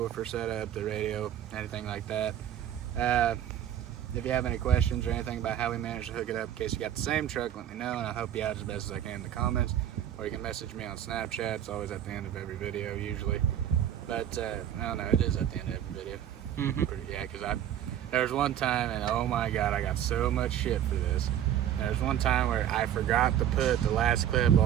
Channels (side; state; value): left; quieter; 10.6 dB